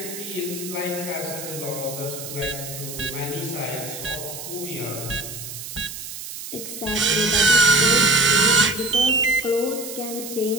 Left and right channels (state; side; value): noise; right; hiss, 9 dB below the sound